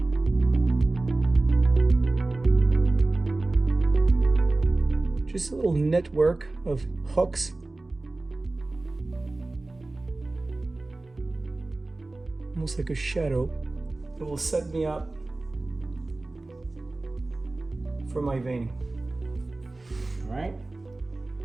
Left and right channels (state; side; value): quieter; left; 3.0 dB